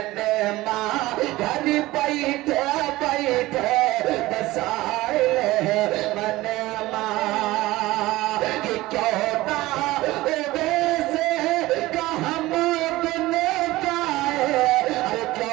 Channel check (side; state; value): left; quieter; 18.3 dB